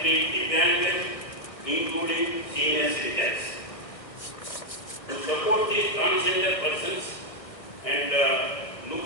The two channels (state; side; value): late; right; 1.5 ms